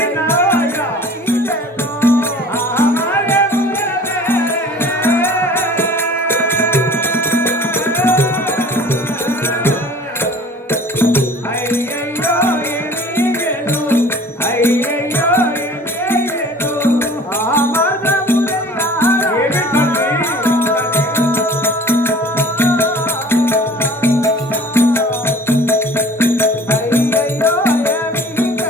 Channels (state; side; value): normal; both; correlation 0.47